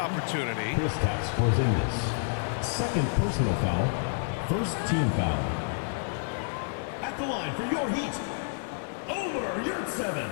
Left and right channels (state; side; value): silent; right; digital silence